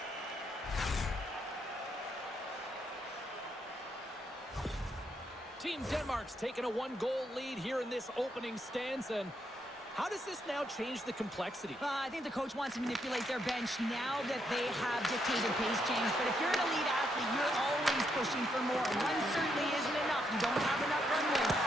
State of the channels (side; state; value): both; normal; correlation 0.77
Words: Team Denmark's taken a one-goal lead here in this opening stanza. And how does this now change the complexity? I think the coach wants to manipulate their bench now that they have dictated pace, James. But if you're an elite athlete, you're always pushing for more. One certainly isn't enough. You don't have enough runway